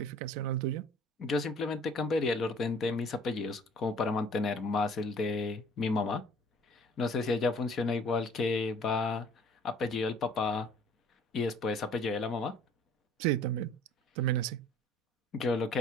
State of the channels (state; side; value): normal; both; correlation 0.53